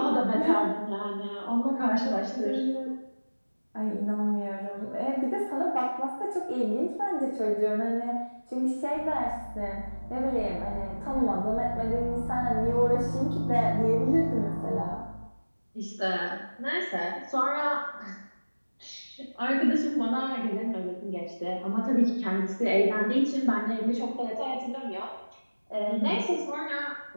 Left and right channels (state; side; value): inverted; both; correlation -1.00